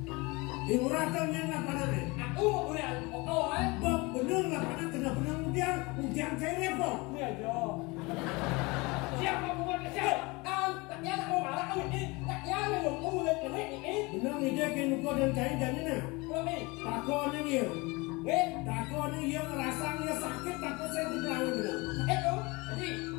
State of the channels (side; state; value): right; quieter; 25.2 dB